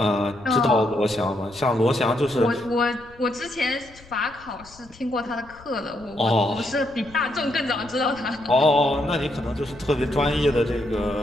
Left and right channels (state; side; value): noise; left; rumble, 24 dB below the sound